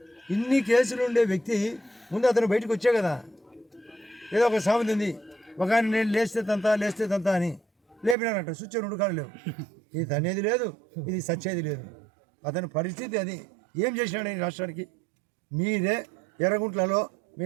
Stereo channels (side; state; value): left; drops out; at 8.2 s